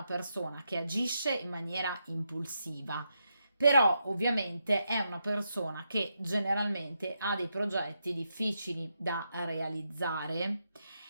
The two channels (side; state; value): both; inverted; correlation -0.83